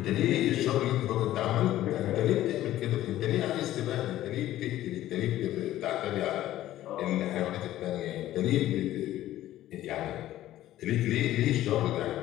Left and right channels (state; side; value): quieter; right; 14.0 dB